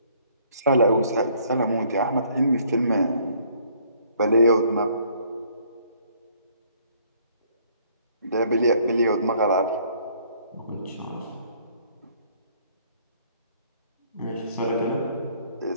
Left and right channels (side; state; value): both; inverted; correlation -0.61